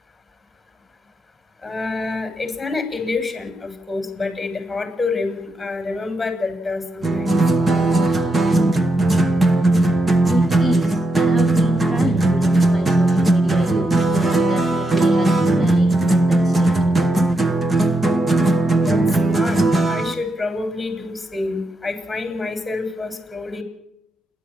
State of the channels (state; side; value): normal; both; correlation 0.83